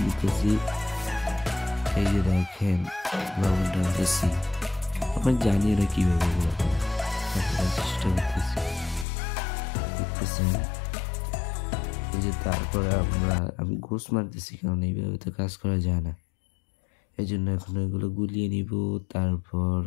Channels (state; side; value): drops out; right; at 9.1 s